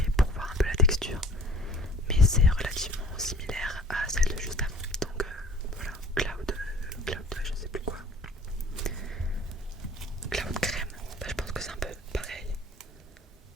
pour voir un peu la texture. Mais c'est relativement similaire à celle de juste avant. Donc voilà, cloud, je sais plus quoi. Cloud crème, bah, je pense que c'est un peu pareil.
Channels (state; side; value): normal; both; correlation 0.48